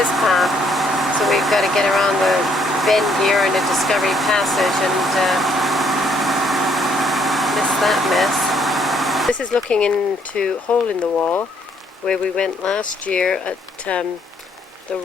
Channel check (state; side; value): normal; both; correlation 0.68